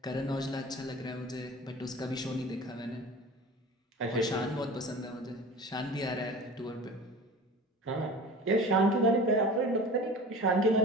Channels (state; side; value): normal; both; correlation 0.38